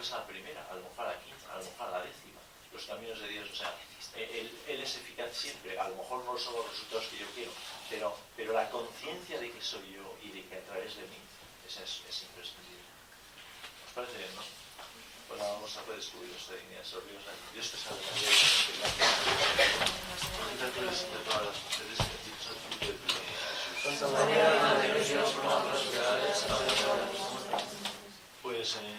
es a la primera, a lo mejor a la quinta, a lo mejor a la décima. Los caminos de Dios, o sea, Él es eficaz siempre. A lo mejor no son los resultados que yo quiero, pero la conciencia de que soy yo y de que a través de mí, esa es imprescindible. ¿Os parece bien, no? Pues vamos a poder descubrir nuestra dignidad. Dios te salve María, de todas las mujeres, bendito es el fruto de tu vientre, Jesús. Santa María, Madre de Dios, ruega por nosotros, pues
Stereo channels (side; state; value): both; identical; correlation 1.00